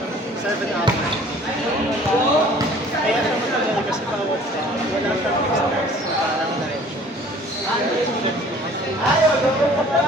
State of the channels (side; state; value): both; normal; correlation 0.52